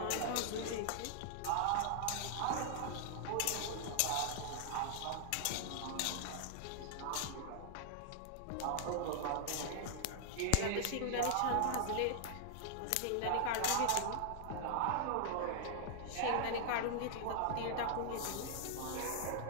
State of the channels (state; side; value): different; both; correlation -0.01